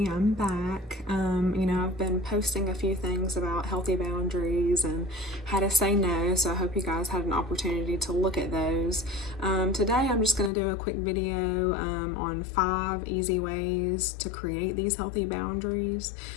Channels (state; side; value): drops out; right; at 10.5 s